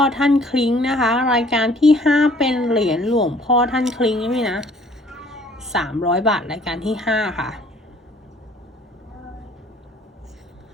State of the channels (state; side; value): normal; both; correlation 0.57